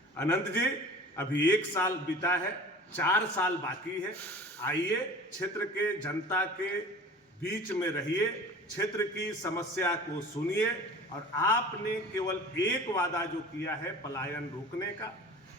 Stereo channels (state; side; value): normal; both; correlation 0.40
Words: अनंत जी अभी 1 साल बीता है, 4 साल बाकी है। आइए क्षेत्र के जनता के बीच में रहिए, क्षेत्र की समस्या को सुनिए और आपने केवल एक वादा जो किया है पलायन रोकने का,